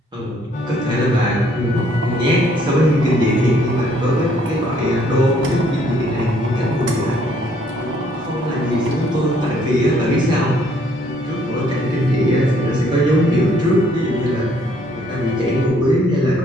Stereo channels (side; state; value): both; normal; correlation 0.65